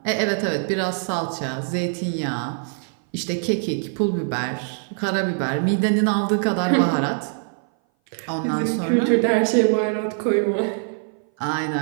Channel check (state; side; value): silent; left; 58 dB below the other